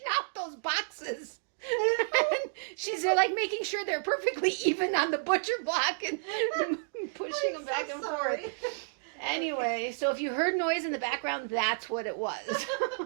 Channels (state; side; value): silent; left; digital silence